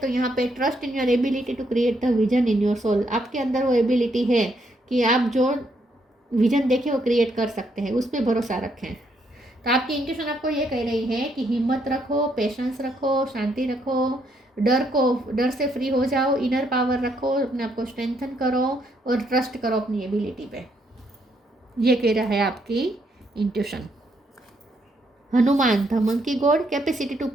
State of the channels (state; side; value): normal; both; correlation 0.74